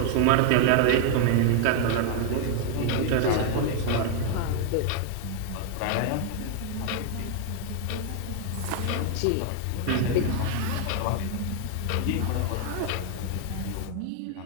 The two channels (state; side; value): different; both; correlation 0.00